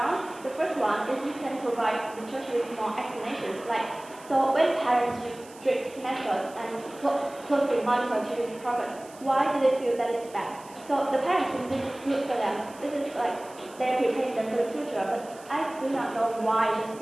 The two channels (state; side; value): noise; right; hiss, 22 dB below the sound